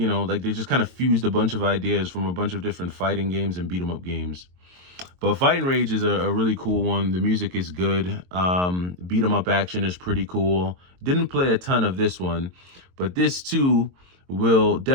just kind of fused a bunch of ideas from a bunch of different fighting games and beat 'em up games. But Fight and Rage is a really cool one. The music is good. Beat 'em up action is pretty cool. Didn't play a ton of this one, but this too will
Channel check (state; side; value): late; left; 22 ms